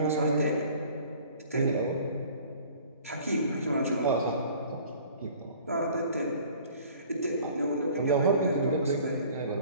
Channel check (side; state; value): both; inverted; correlation -0.50